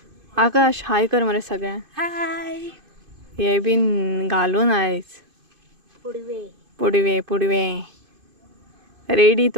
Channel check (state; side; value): late; left; 2.5 ms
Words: आकाश हाय कर मरे सगळ्यांक. हाय. हे बीन घालून आयज पुडवे रेडी.